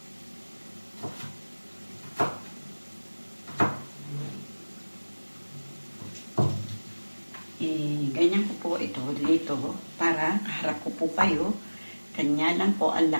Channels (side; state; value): both; inverted; correlation -1.00